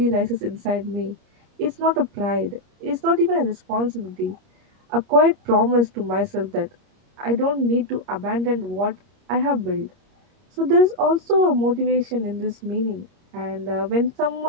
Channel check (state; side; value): late; left; 30 ms